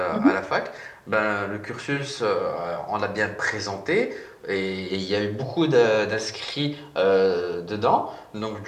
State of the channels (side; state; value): both; identical; correlation 1.00